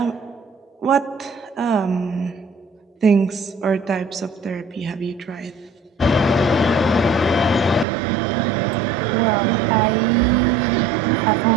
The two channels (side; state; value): left; drops out; at 7.9 s